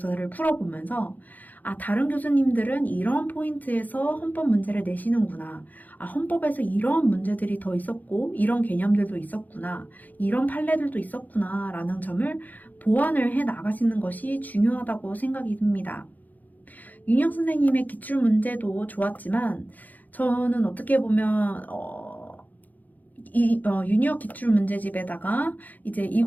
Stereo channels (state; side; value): late; right; 0.082 ms